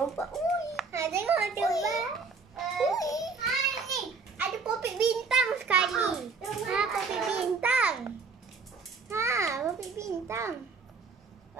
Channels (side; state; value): left; quieter; 4.6 dB